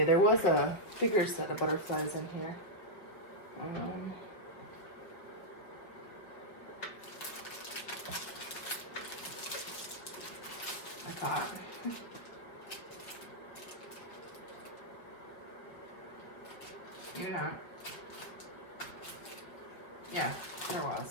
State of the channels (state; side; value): late; right; 5.3 ms